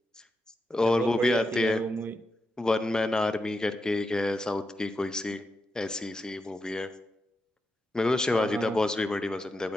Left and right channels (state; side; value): normal; both; correlation 0.86